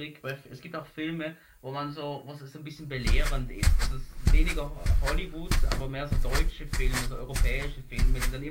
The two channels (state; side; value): identical; both; correlation 1.00